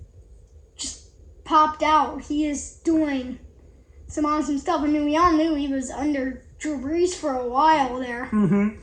just popped out. He is doing some awesome stuff. I mean, we all knew he was under Drew Brees for a while there. Mm-hmm.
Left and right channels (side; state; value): both; identical; correlation 1.00